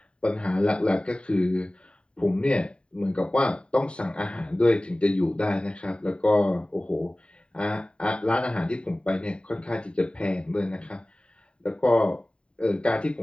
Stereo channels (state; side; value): late; right; 0.054 ms